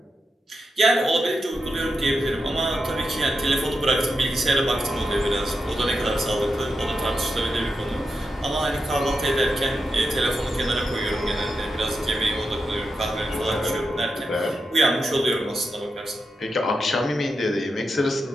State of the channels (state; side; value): normal; both; correlation 0.87